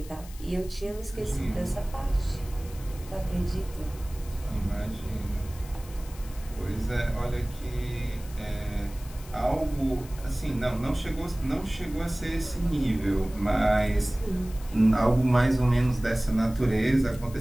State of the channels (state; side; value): noise; left; hiss, 19 dB below the sound